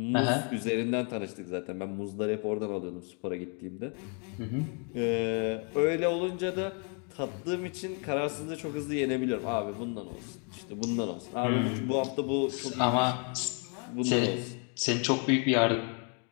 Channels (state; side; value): quieter; right; 39.5 dB